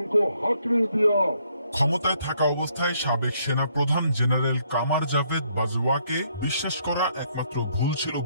हक नहीं दिया। ক্ষমতায় থাকা অবস্থায় সাবেক সেনা প্রধান জেনারেল কামার জাভেদ বাজওয়াকে বিশ্বাস করা একমাত্র ভুল ছিল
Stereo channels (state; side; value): inverted; both; correlation -0.70